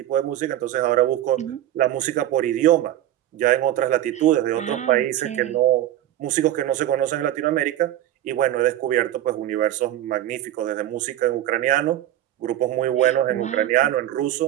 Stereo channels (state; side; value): quieter; left; 12.8 dB